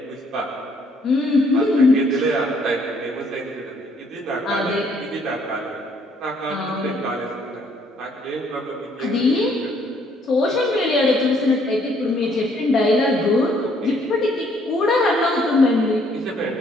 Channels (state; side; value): normal; both; correlation 0.66